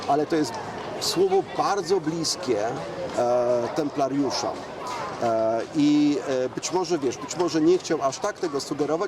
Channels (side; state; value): both; identical; correlation 1.00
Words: ale to jest słowo bardzo bliskie templariuszom. I być może nie chciał aż tak tego